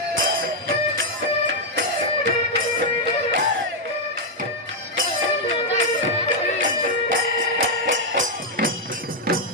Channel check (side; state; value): both; normal; correlation -0.01